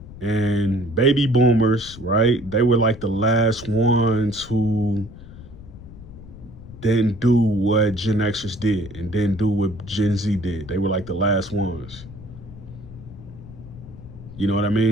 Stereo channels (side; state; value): left; noise; rumble, 16 dB below the sound